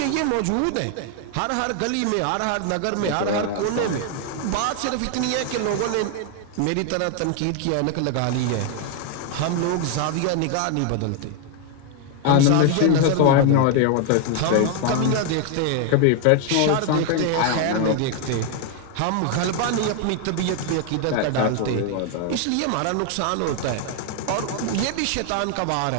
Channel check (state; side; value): different; both; correlation 0.01